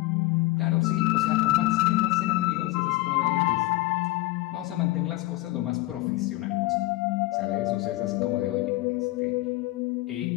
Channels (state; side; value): quieter; right; 18.7 dB